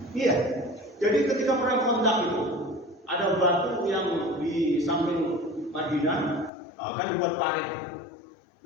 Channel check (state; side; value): drops out; right; at 6.5 s